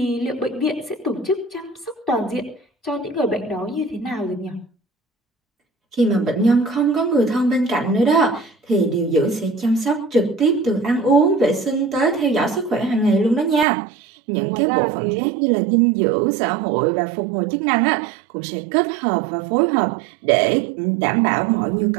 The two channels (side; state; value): left; drops out; at 13.7 s